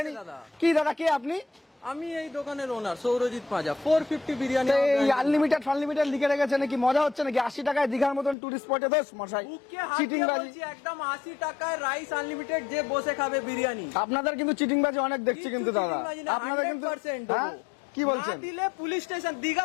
কি দাদা, কে আপনি? আমি এই দোকানের ওনার সৌরজিৎ পাঁজা। 450 বিরিয়ানি। এই আনলিমিটেড ফানলিমিটেড লিখে রেখেছে নাকি? মজা হচ্ছে নাকি? 80 টাকায় দীঘার মতন টুরিস্ট স্পটে দোষ মশাই, চিটিং বাজি একদম 80 টাকায় রাইস আনলিমিটেড, যে বসে খাবে বিরিয়ানি। আপনাদের কিন্তু চিটিং বাজি অনেক দেখছি কিন্তু দাদা, আপনাদের কিন্তু কি বলছেন? দিলে পুলিশ স্টেশন, দীঘা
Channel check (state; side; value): drops out; right; at 8.3 s